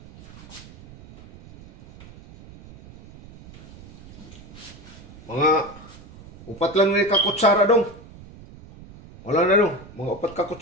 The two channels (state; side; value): noise; right; rumble, 19 dB below the sound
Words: Mga upat lang ni ka kutsara dong. Wala na dong, mga upat ka